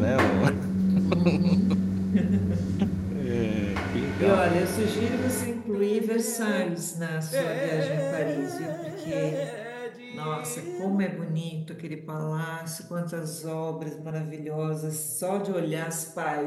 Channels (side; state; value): both; identical; correlation 1.00